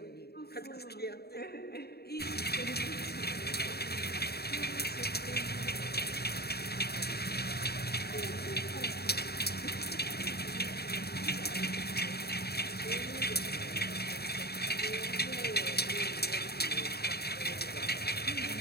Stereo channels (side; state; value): right; late; 0.46 ms